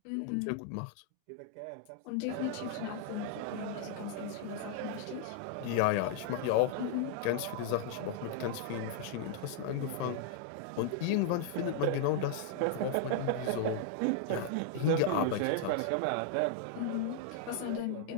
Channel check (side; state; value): both; different; correlation -0.01